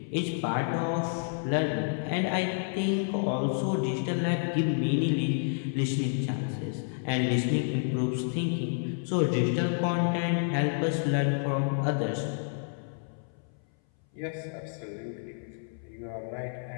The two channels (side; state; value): right; silent; 58 dB below the other